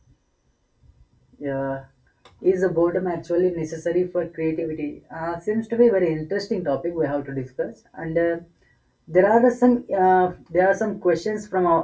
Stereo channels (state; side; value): identical; both; correlation 1.00